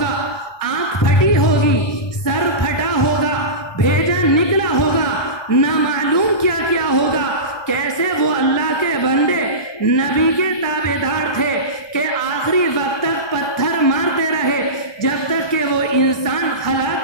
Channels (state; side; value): late; right; 1.2 ms